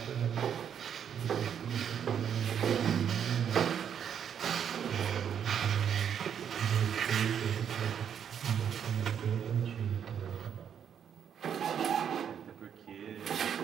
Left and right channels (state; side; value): quieter; left; 8.4 dB